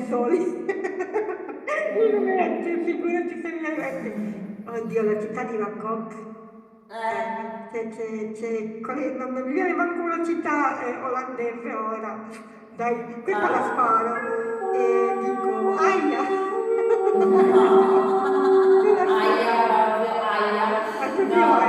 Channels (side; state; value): both; identical; correlation 1.00